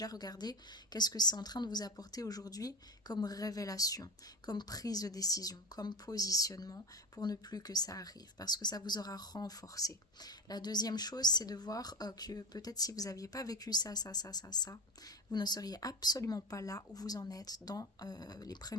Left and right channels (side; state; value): both; normal; correlation 0.25